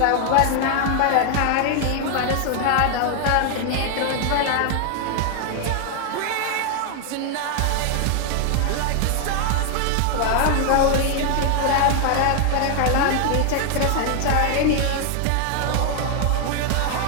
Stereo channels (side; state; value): both; different; correlation 0.00